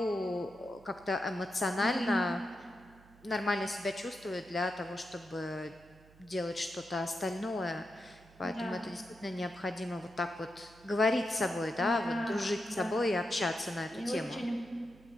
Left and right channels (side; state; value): right; noise; hum, 25 dB below the sound